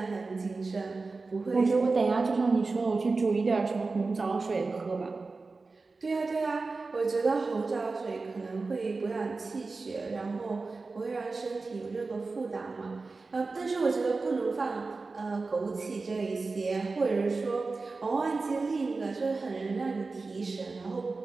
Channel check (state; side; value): quieter; left; 3.9 dB